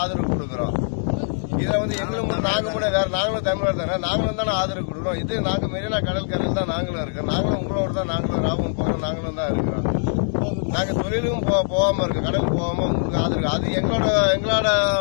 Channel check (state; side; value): silent; right; digital silence